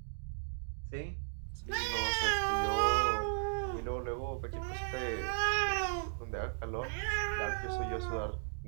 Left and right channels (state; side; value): silent; left; digital silence